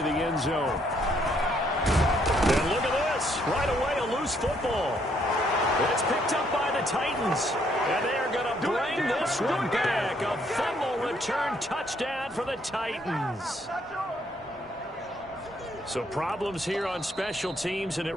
the end zone. And look at this. Right away, a loose football. It's picked up by the Titans. And they are going to bring this one back. A fumble return touchdown for the Titans. So problems here on special teams, and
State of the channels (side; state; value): both; normal; correlation 0.70